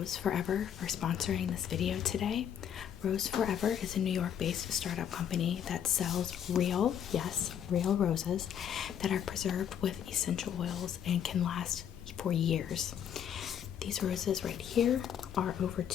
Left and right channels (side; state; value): right; quieter; 9.0 dB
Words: Forever for sponsoring this video today. Rose Forever is a New York-based startup company that sells real, yes, real roses that are preserved with essential oils and can last for years. These roses right here are over